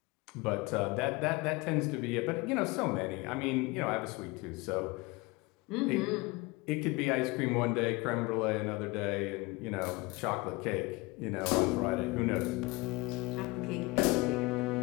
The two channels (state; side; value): quieter; right; 24.0 dB